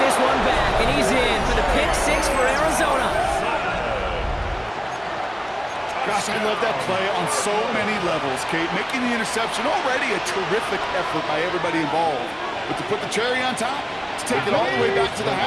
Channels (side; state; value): both; identical; correlation 1.00